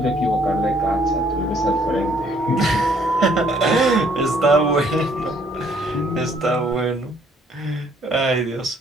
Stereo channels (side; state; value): both; normal; correlation 0.63